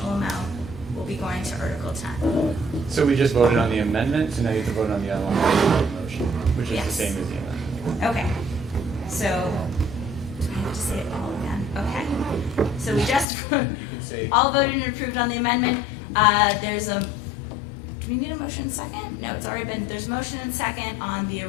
amount will be going to Article 10. So we just voted on the amendment, so now you have to vote on the underlying motion, which is Yes. the same as the amendment. Okay. So, do I have to say it all again? Okay. So we just all voted and approved on the amendment. There's a, do we need a motion second? No, it's already been, there's motion and second on the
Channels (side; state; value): right; drops out; at 13.2 s